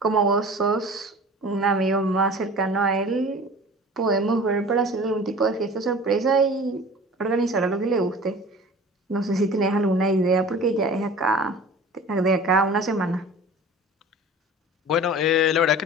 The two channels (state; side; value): normal; both; correlation 0.41